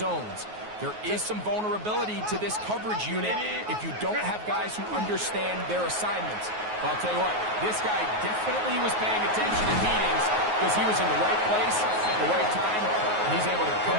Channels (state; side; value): late; left; 9.4 ms